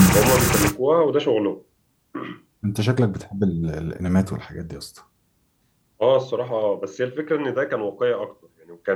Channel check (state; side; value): identical; both; correlation 1.00